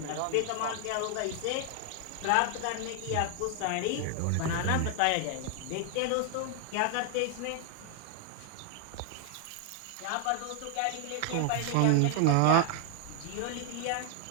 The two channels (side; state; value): both; different; correlation 0.00